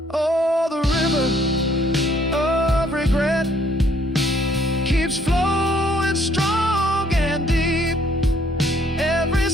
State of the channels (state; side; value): normal; both; correlation 0.64